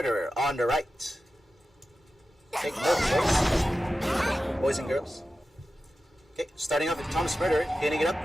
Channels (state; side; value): normal; both; correlation 0.93